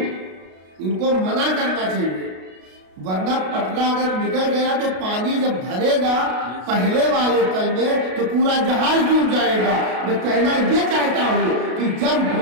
ان کو منع کرنا چاہیے، ورنہ پٹرا اگر نکل گیا تو پانی جب بھرے گا پہلے والے تل میں تو پورا جہاز ڈوب جائے گا۔ میں کہنا یہ چاہتا ہوں کہ جب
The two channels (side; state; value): left; late; 33 ms